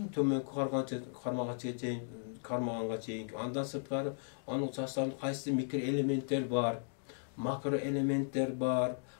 төмөнкү кармаганга чейин, андан сырткары анын составында кайсы микроэлементтер бар, макроэлементтер бар,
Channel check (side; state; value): right; silent; digital silence